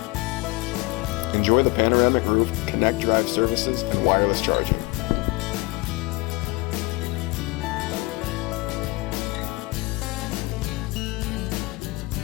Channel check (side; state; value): right; quieter; 23.7 dB